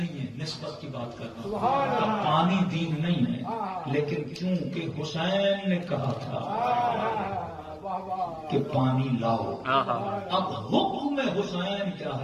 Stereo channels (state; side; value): identical; both; correlation 1.00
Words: ہے، نسبت کی بات کرنا، کہ پانی دین نہیں ہے، لیکن کیونکہ حسین نے کہا تھا کہ پانی لاؤ، اب حکم حسین کیا